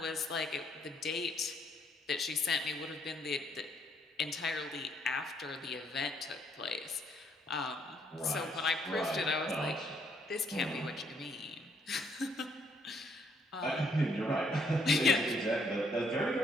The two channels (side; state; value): both; normal; correlation 0.70